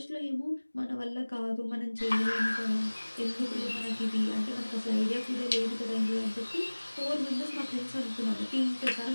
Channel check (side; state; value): both; inverted; correlation -1.00